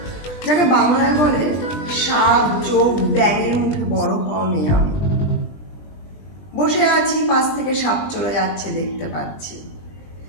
যাকে বাংলায় বলে সাপ চোখ ব্যাঙের মুখে বড় হওয়া মেয়ে আমি। বসে আছি, পাশ থেকে সাপ চলে যাচ্ছে দেখতে পাচ্ছি।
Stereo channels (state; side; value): late; right; 20 ms